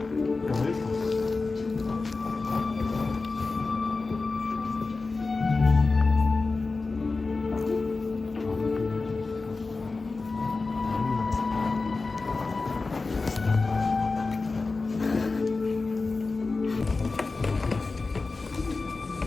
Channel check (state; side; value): quieter; right; 3.8 dB